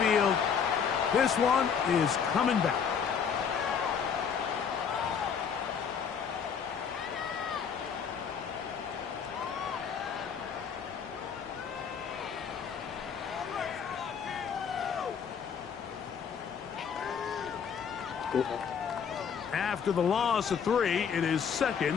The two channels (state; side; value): quieter; right; 7.0 dB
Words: This one is coming back. After the loss of 3, it is